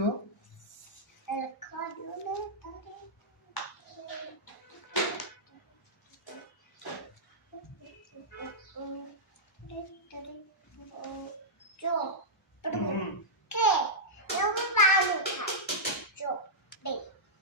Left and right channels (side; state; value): both; normal; correlation -0.11